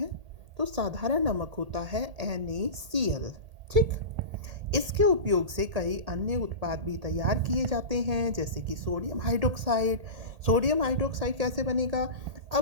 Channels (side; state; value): left; late; 1.8 ms